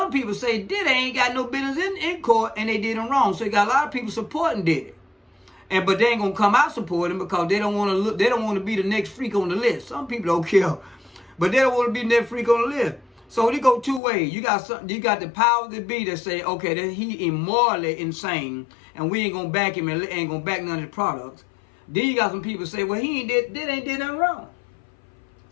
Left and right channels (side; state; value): right; drops out; at 14.0 s